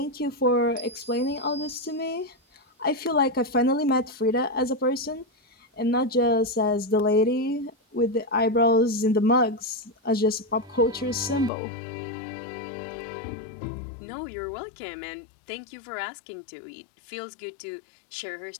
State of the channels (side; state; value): right; drops out; at 11.5 s